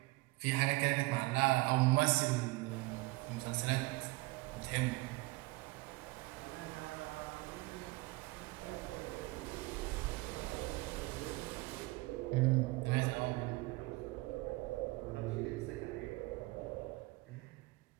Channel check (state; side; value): quieter; left; 22.7 dB